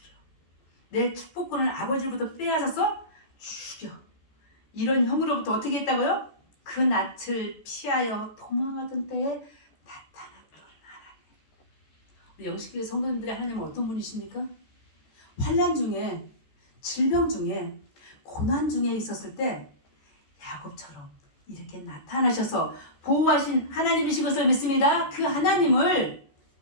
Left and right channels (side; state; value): right; late; 14 ms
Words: 내 축복권을 아버지로부터 빼앗았어? 죽여. 이런 형으로부터 어떻게 했다고요? 그 낯을 피하여 도망하던 때에 나타났던 하나님. 우리 영식교회 성도님들의 하나님은 어떤 분이십니까? 환난 중에, 질병 중에, 고난 중에 있었을 때 야곱처럼 이렇게 나타나셔서 보호하신 하나님이신 것을 믿습니다. 그 하나님을